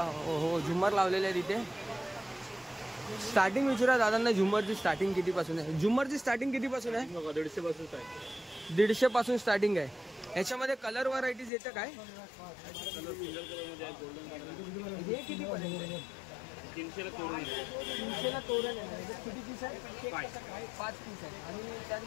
झुम्मर लावलेले आहेत इथे. स्टार्टिंग विचारा दादांना, झुम्मरची स्टार्टिंग कितीपासून आहे? झुम्मरची स्टार्टिंग कितीपासून आहे? 150 पासून 150 पासून स्टार्टिंग आहे. याच्यामध्ये कलर व्हरायटीज येतं काय? हे किती पर्यंत? 300 तोरण 300 तोरण आहे. किती पीस आहे? 5 पीस आहे. आणि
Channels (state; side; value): drops out; right; at 11.5 s